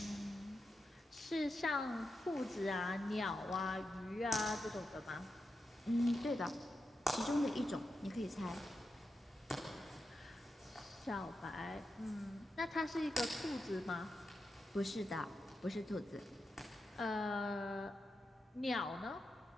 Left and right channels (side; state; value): both; normal; correlation 0.88